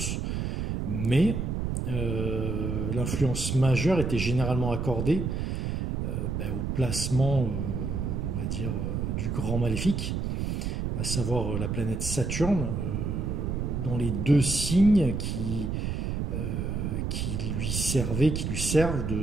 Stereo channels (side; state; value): right; noise; rumble, 1 dB below the sound